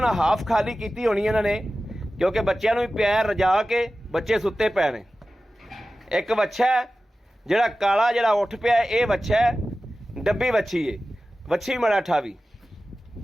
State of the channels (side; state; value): both; normal; correlation 0.95